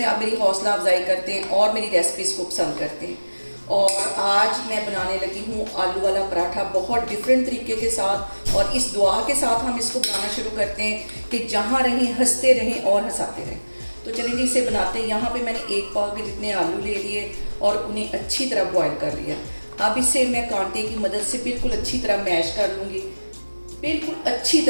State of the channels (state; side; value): inverted; both; correlation -1.00